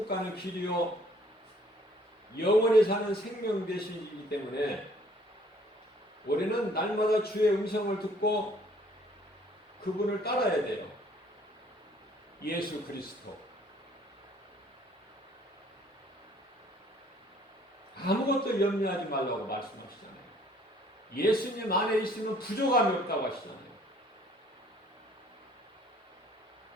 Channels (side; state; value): both; normal; correlation 0.59